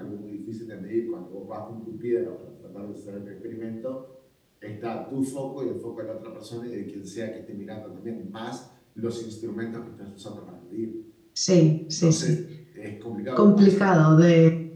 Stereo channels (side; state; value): both; identical; correlation 1.00